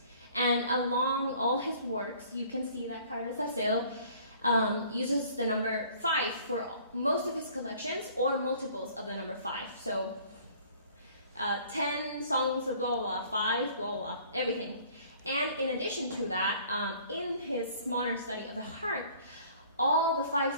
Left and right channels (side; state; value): both; inverted; correlation -0.54